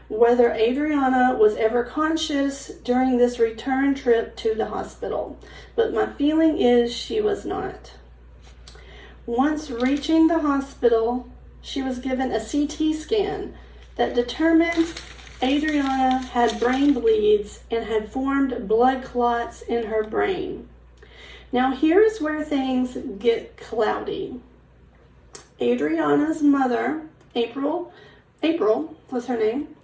whether Adriana was ever conscious during this return trip to the hospital, but my feeling is she was not. Once reaching the hospital, she was given a CT scan that determined Adriana had brain bleeds and had formed blood clots in her brain. Now here's where things get cloudy. Adriana's mother, April was her name,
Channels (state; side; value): identical; both; correlation 1.00